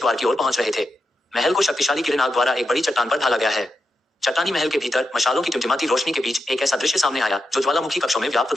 की ओर पहुंच रहे थे। महल को शक्तिशाली किरण आग द्वारा एक बड़ी चट्टान पर ढाला गया है। चट्टानी महल के भीतर मशालों की टिमटिमाती रोशनी के बीच एक ऐसा दृश्य सामने आया जो ज्वालामुखी कक्षों में व्याप्त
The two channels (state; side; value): normal; both; correlation 0.87